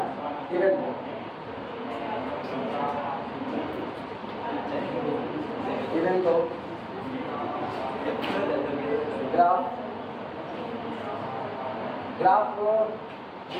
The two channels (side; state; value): both; identical; correlation 1.00